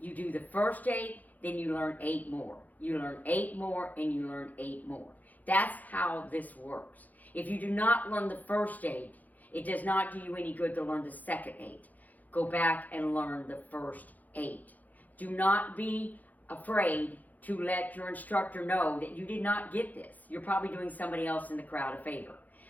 do the first 8, then you learn 8 more. You learn 8 more, and you learn 8 more. That's how this works. If you do not learn the first 8, it does not do you any good to learn the second 8. Go back and learn the first 8. Do not be afraid to let your instructor know that you did not get this. You're probably doing somebody else in the crowd a favor,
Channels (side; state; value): right; late; 0.081 ms